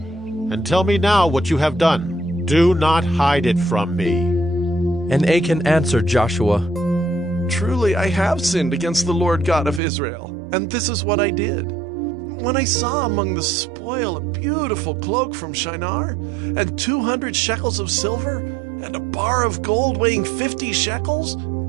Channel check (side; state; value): left; drops out; at 9.8 s